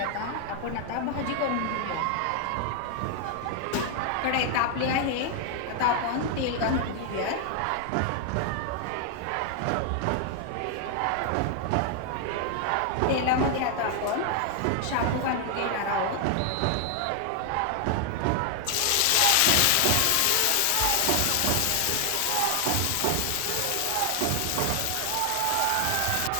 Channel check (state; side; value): different; both; correlation 0.00